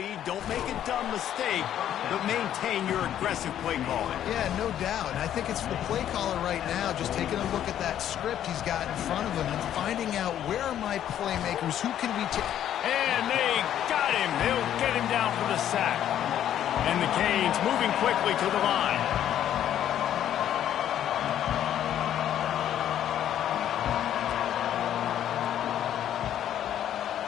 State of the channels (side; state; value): right; quieter; 10.8 dB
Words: Don't make a dumb mistake, but maintain your aggressive play calling. Yeah, no doubt. And I think it's the play caller right now just taking a look at that script he's got in front of him and finding out where are my playmakers, who can we take. And they got him. They'll get him down for the sack. And the Canes moving quickly to the line.